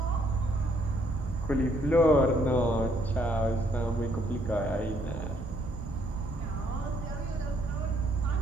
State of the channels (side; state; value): both; normal; correlation 0.68